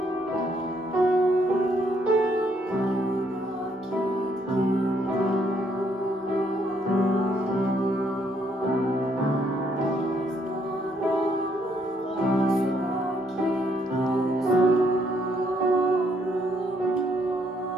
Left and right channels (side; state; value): both; normal; correlation 0.70